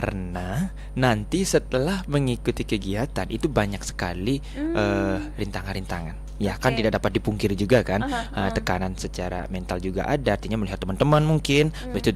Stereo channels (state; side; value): identical; both; correlation 1.00